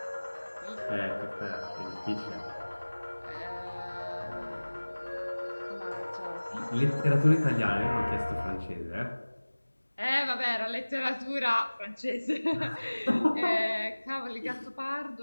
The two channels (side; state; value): both; inverted; correlation -1.00